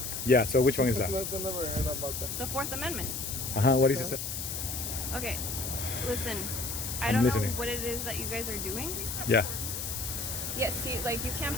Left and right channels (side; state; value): left; noise; hiss, 4 dB below the sound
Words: Yeah. So which one is that? I never heard about that. the Fourth Amendment. What is it? Okay, listen, I I'm don't listening. know what it is that you guys are doing. Yeah. Yeah, see, like you can't